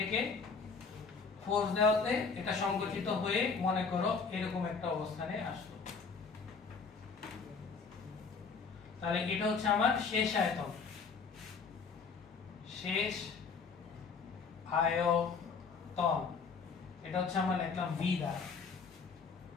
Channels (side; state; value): right; quieter; 5.2 dB